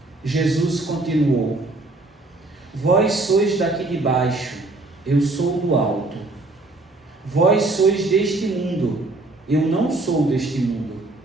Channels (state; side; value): quieter; left; 3.0 dB